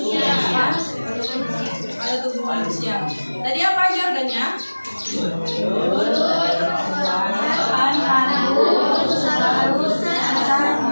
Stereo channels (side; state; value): both; inverted; correlation -1.00